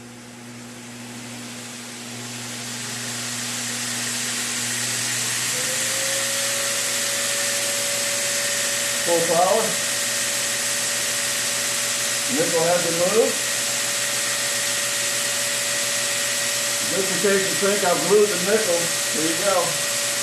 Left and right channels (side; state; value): both; identical; correlation 1.00